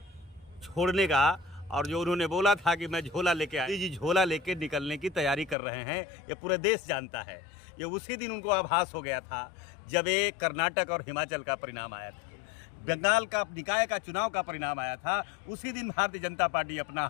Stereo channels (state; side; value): drops out; right; at 5.6 s